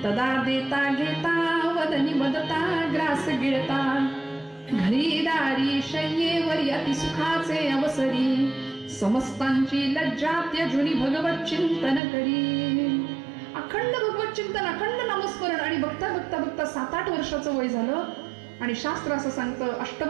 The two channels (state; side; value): drops out; left; at 12.0 s